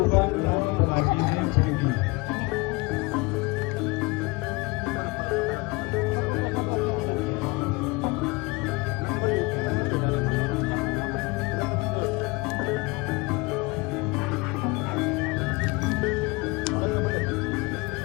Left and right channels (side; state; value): right; quieter; 25.1 dB